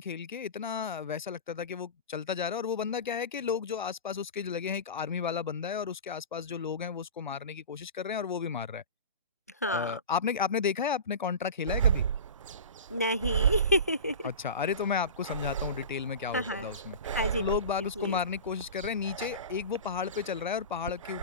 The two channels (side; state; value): both; inverted; correlation -0.30